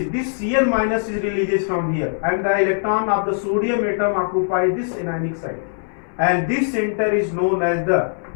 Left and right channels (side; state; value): right; silent; 65 dB below the other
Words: This Cl minus is releases from here, and the electron of the sodium atom occupies this anionic site. And this center is known as